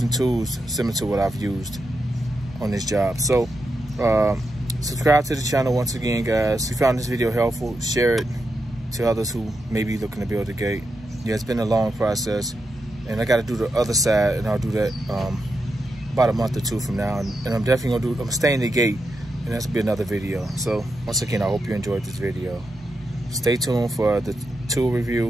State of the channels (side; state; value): both; normal; correlation 0.86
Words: tools similar to what I've used. on this job. So subscribe to the channel once again, guys. If you found this video helpful, share it to others who may be looking to build a gate. Yeah, it's been a long process, and I got to do the other side, and I'll do that about a month or two from now. And I'm definitely gonna I'm staying the gate, and that's gonna be another video. So once again, I hope you enjoyed this video. Stay tuned for the tool